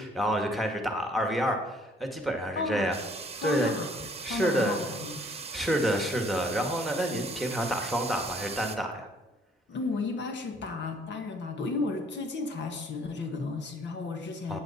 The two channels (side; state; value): both; normal; correlation 0.60